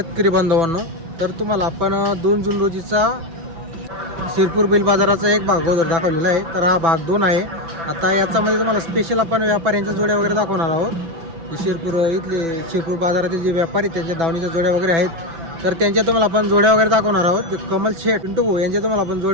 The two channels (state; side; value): late; left; 6.0 ms